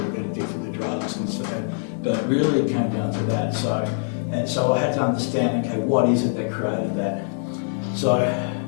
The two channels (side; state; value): right; silent; 63 dB below the other